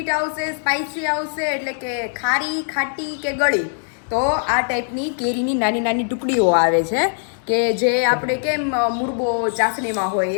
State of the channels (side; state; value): right; silent; digital silence